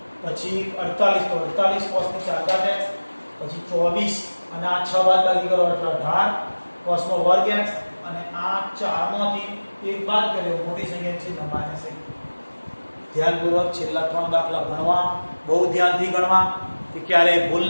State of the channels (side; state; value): both; inverted; correlation -1.00